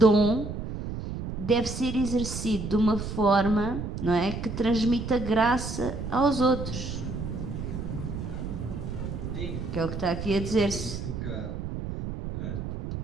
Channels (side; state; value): right; noise; rumble, 6 dB below the sound